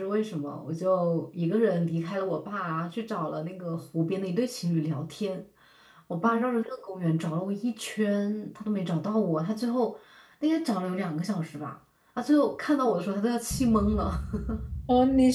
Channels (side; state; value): both; identical; correlation 1.00